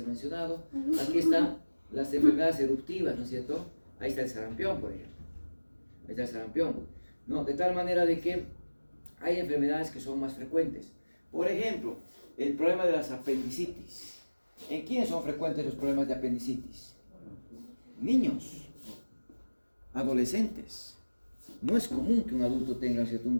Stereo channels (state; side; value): inverted; both; correlation -1.00